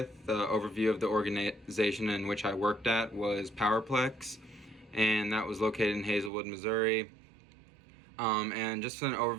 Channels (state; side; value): drops out; left; at 6.3 s